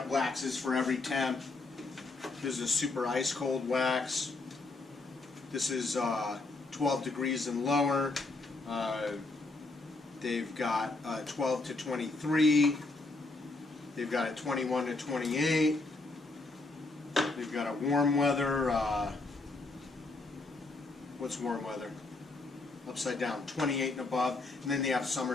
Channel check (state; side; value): quieter; right; 3.3 dB